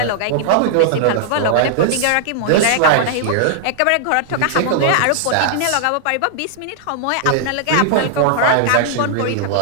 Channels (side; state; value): both; different; correlation -0.01